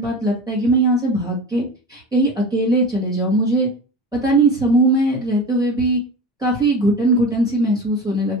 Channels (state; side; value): normal; both; correlation 0.31